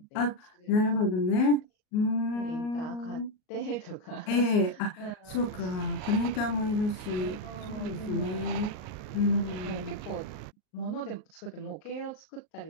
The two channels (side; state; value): right; late; 38 ms